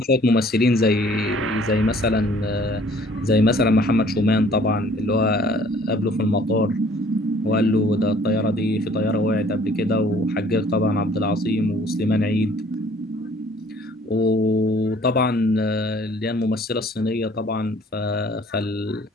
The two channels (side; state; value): both; normal; correlation 0.56